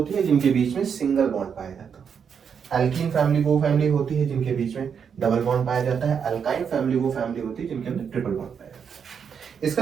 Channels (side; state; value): left; quieter; 7.0 dB